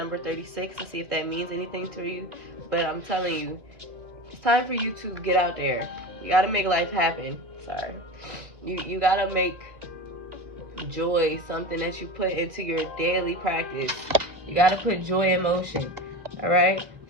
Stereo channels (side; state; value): left; late; 2.4 ms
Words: 36, and see if that means anything to you. But I'm telling you, it's time for you to get out there. You got to make life happen. Sorry. You got to make joy something that you put into your daily practice. You got to put joy in motion. All right.